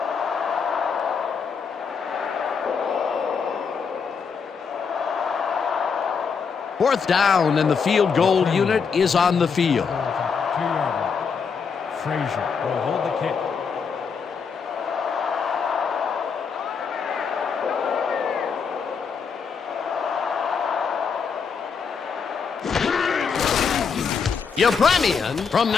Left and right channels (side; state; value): right; quieter; 5.9 dB